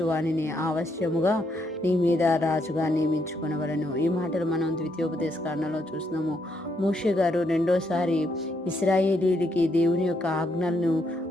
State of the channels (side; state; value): both; normal; correlation 0.76